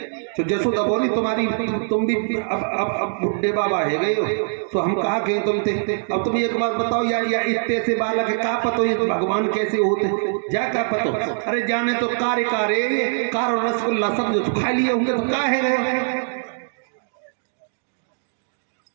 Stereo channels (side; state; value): left; silent; digital silence